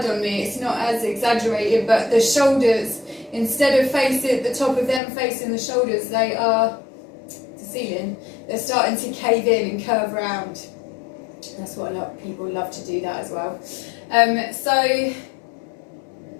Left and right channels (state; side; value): drops out; right; at 5.0 s